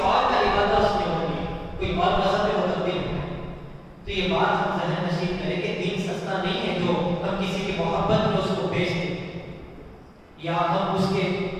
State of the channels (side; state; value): both; identical; correlation 1.00